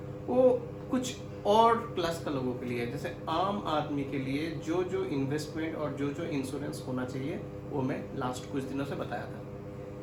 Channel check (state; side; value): identical; both; correlation 1.00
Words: वो कुछ और क्लास का लोगों के लिए। जैसे आम आदमी के लिए जो जो इन्वेस्टमेंट और जो जो इंश्योरेंस होना चाहिए वो मैं लास्ट कुछ दिनों से बताया